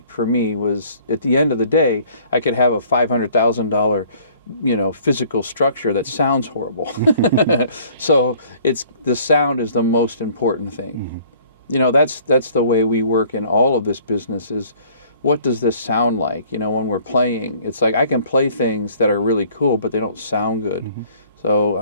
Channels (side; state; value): both; inverted; correlation -0.56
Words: for me, was at the end of the day, I could have a $500,000, you know, physical structure that sounds horrible. So the sound is the most important thing. You know, that's the way we work in all of this business, is what does this sound like? You know, when we're playing, it's like I can play things that are really cool, but they don't sound good.